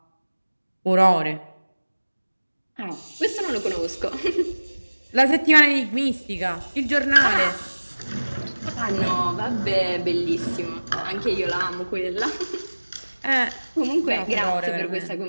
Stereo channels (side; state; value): both; inverted; correlation -1.00